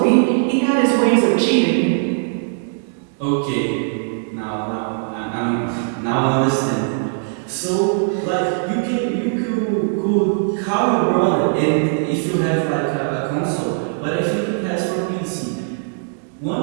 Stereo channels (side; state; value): left; silent; digital silence